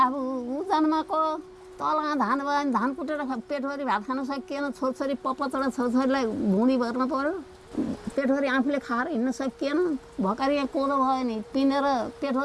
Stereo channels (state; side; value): identical; both; correlation 1.00